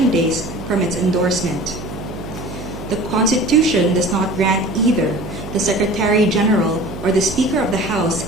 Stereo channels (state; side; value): noise; right; hum, 11 dB below the sound